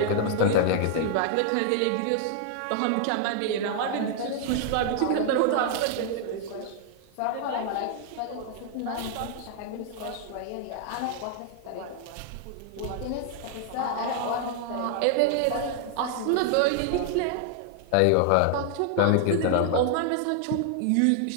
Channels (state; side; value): different; both; correlation 0.00